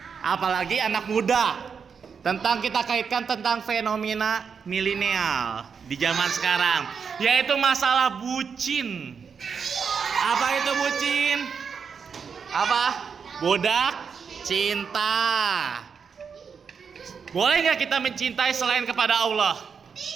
Apalagi anak muda. Tentang kita kaitkan tentang fenomena milenial di zaman sekarang, yaitu masalah bucin. Apa itu bucin? Apa? Budak cinta. Boleh nggak kita mencintai selain kepada Allah?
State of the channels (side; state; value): left; quieter; 6.3 dB